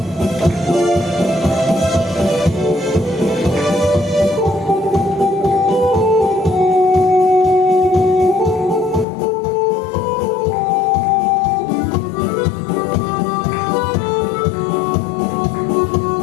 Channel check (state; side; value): drops out; right; at 9.1 s